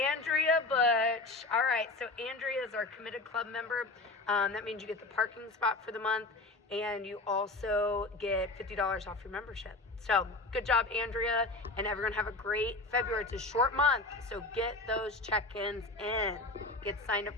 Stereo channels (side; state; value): right; quieter; 3.0 dB